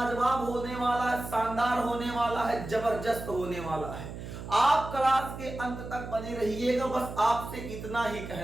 होने वाला है, शानदार होने वाला है, जबरदस्त होने वाला है। आप क्लास के अंत तक बने रहिएगा। बस आपसे इतना ही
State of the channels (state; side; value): noise; right; hum, 10 dB below the sound